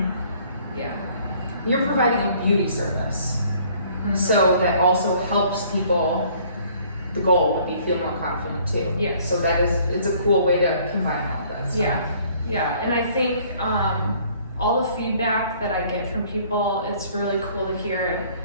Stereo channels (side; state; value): both; inverted; correlation -0.58